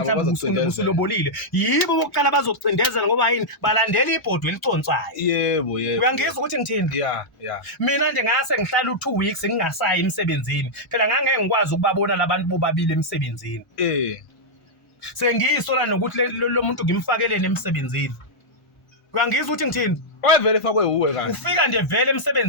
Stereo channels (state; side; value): late; right; 1.0 ms